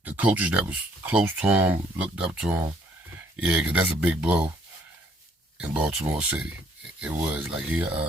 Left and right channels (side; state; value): both; normal; correlation 0.65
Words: coaches that was close to him, looked up to him. Yeah, because that's a big blow in Baltimore City. It was like